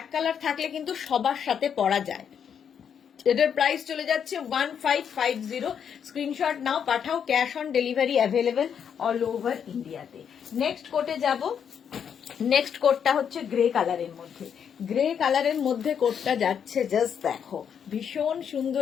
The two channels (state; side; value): quieter; right; 7.8 dB